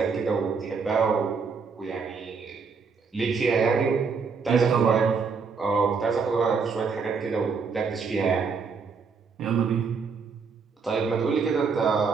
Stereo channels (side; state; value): left; quieter; 5.3 dB